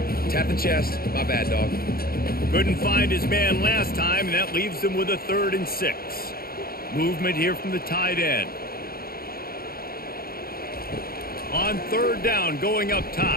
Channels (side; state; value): right; late; 0.43 ms